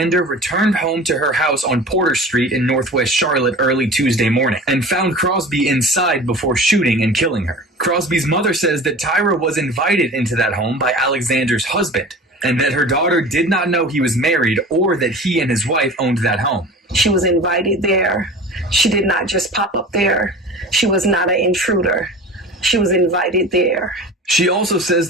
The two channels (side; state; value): both; normal; correlation 0.38